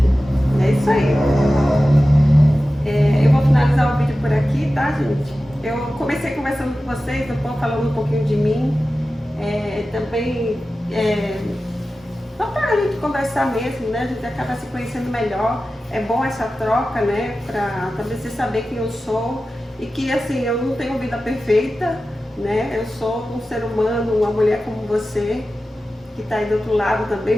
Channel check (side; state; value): both; normal; correlation 0.94